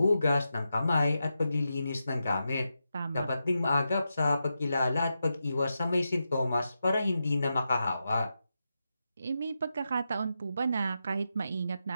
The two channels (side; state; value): both; inverted; correlation -0.88